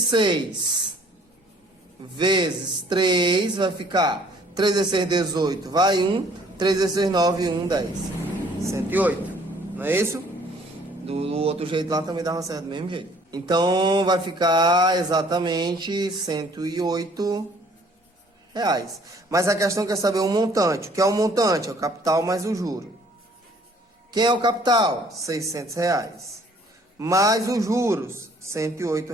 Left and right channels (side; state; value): both; normal; correlation 0.58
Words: vezes 3 vai ficar 3 vezes 6, 18, vai 1, 3 vezes 6, 9, 1, 10. 108, não é isso? Do outro jeito lá também dava certo do mesmo jeito. Então vai ficar exatamente R$ 108. Mas a questão quer saber o montante. O que é o montante? É o capital mais o juro. Quem é o capital? R$ 600. Mais os juros, R$ 108.